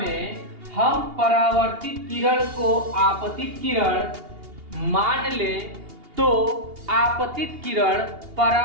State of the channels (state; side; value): late; left; 2.8 ms